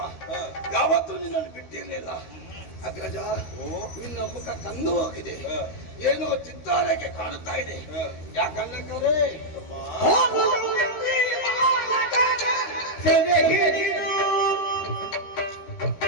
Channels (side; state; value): right; late; 13 ms